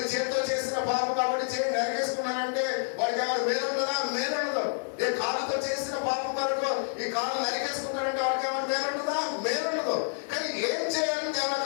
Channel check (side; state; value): right; silent; digital silence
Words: చేతితో చేసిన పాపం కాబట్టి చేయి నరికేసుకున్నానంటే వాడికి ఎవరు మేలు ఉండదా? మేలు ఉండదు. నేను కాలుతో చేసిన పాపం కొరకు ఈ కాలు నరికేసుకున్నానంటే వాడికి ఎవరు మేలు ఉండదా? మేలు ఉండదు. కానీ ఏం చేయాలని